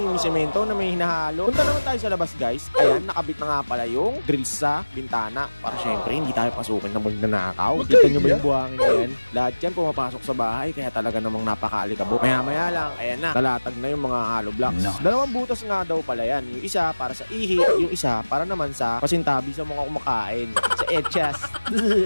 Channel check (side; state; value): both; inverted; correlation -1.00